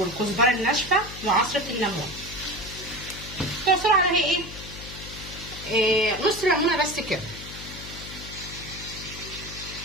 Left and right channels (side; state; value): left; noise; hum, 12 dB below the sound